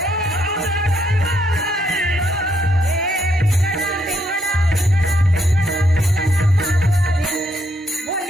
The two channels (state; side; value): normal; both; correlation 0.75